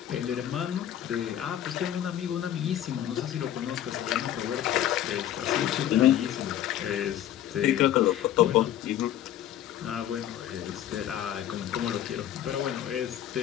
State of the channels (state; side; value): quieter; right; 11.5 dB